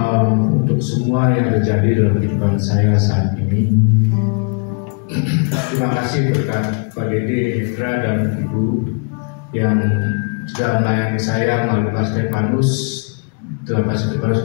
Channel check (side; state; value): right; quieter; 36.8 dB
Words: untuk semua yang terjadi dalam kehidupan saya saat ini. Terima kasih berkat Pak Dede, Hendra, dan Ibu yang sudah melayani saya melalui Pak Stefanus. Pak Stefanus